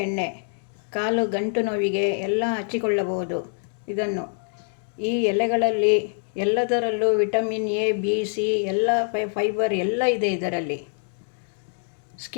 ಎಣ್ಣೆ. ಕಾಲು ಗಂಟು ನೋವಿಗೆ ಎಲ್ಲ ಹಚ್ಚಿಕೊಳ್ಳಬಹುದು. ಇದನ್ನು ಈ ಎಲೆಗಳಲ್ಲಿ ಎಲ್ಲದರಲ್ಲೂ ವಿಟಮಿನ್ ಎ, ಬಿ, ಸಿ, ಎಲ್ಲ ಫೈಬರ್ ಎಲ್ಲ ಇದೆ ಇದರಲ್ಲಿ.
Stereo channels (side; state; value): right; silent; 62 dB below the other